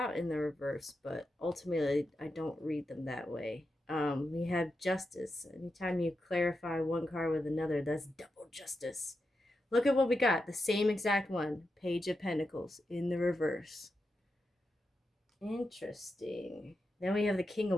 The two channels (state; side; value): normal; both; correlation 0.88